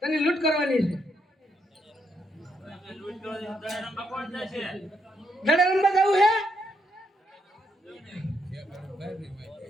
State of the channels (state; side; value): normal; both; correlation 0.77